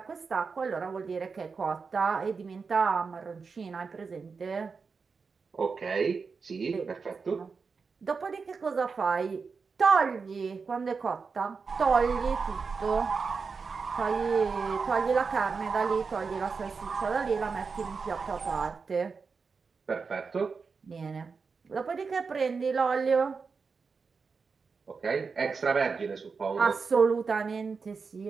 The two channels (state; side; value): quieter; left; 5.0 dB